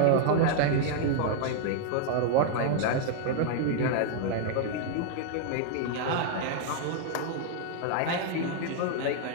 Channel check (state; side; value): different; both; correlation 0.00